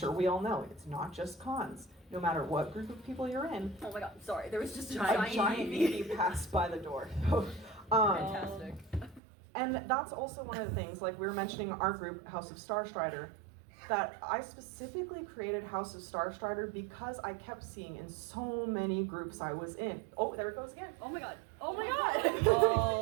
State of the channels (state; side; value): drops out; left; at 9.2 s